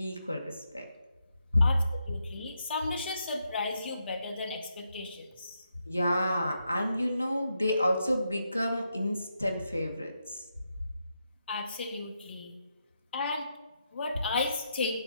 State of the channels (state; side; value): inverted; both; correlation -0.82